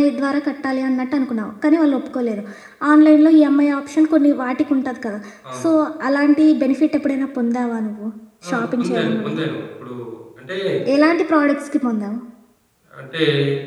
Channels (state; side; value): identical; both; correlation 1.00